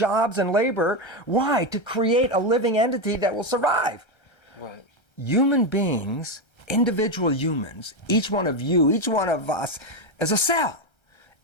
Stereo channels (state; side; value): late; right; 1.3 ms